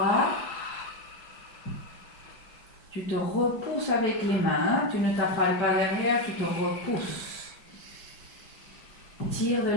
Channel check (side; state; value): right; late; 4.7 ms